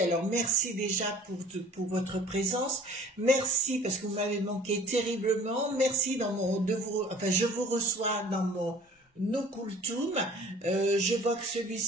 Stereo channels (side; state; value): both; normal; correlation 0.49